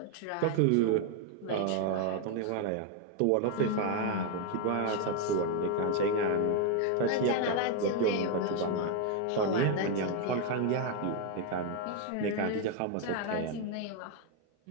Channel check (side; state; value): both; different; correlation 0.01